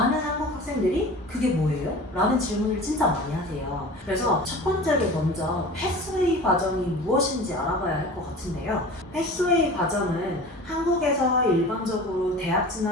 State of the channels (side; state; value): both; normal; correlation 0.38